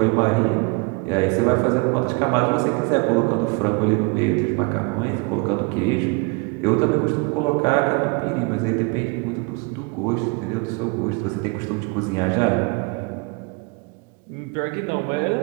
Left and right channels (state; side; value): quieter; left; 29.4 dB